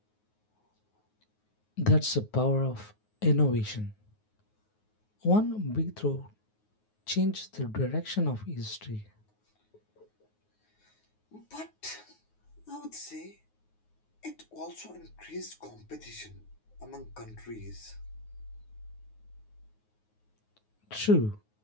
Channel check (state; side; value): late; right; 9.5 ms